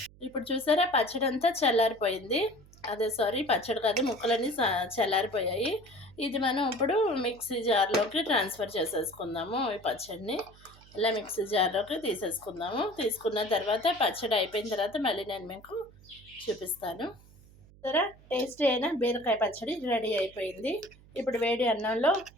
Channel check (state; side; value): noise; right; hum, 24 dB below the sound